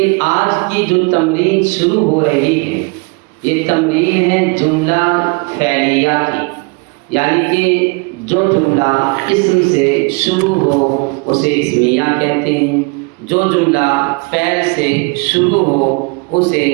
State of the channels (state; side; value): quieter; left; 31.1 dB